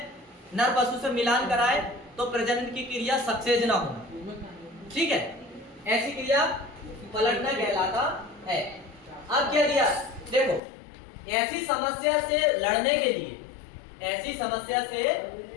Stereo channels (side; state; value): right; drops out; at 10.6 s